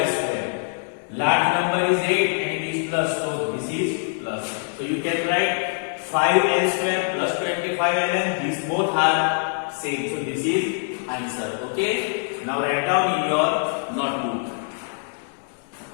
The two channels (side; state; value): right; silent; 63 dB below the other